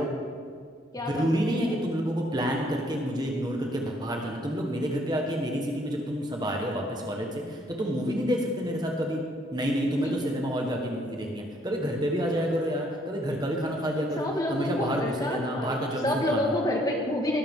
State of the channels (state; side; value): normal; both; correlation 0.66